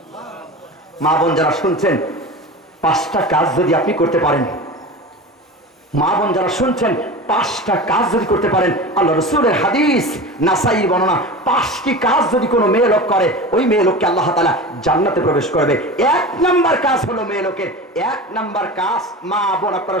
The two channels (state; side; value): normal; both; correlation 0.31